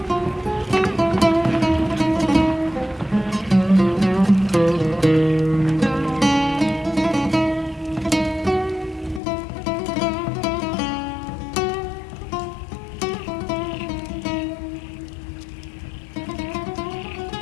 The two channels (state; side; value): drops out; right; at 9.2 s